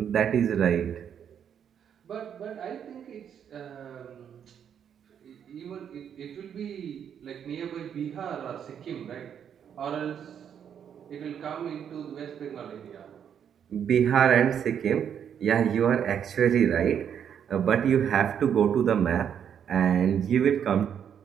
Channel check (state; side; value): quieter; left; 8.5 dB